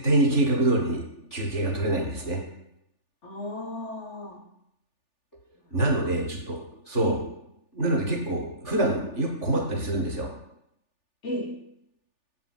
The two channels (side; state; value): right; late; 3.4 ms